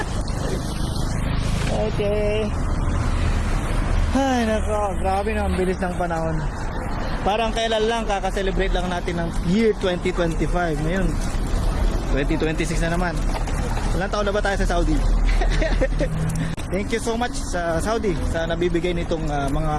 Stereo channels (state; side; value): identical; both; correlation 1.00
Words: Okay. Ay, nako. Grabe na, ang bilis ng panahon. Parang kailan lang, kakaselebrate lang natin ng year 2025. Ngayon, 2026 na naman. Ilang taon na ba tayo sa Saudi? Thank you so much sa Saudi sa nabibigay nitong mga